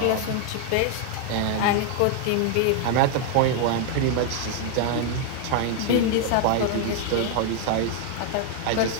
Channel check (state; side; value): different; both; correlation 0.00